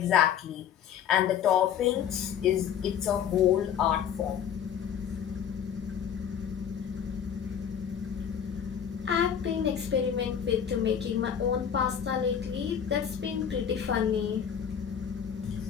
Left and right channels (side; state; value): right; quieter; 8.5 dB